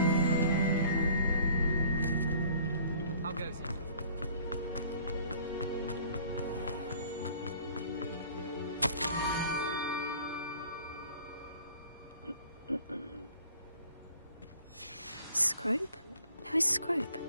How goes it? Scrope? Who is Scrope?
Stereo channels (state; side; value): inverted; both; correlation -0.53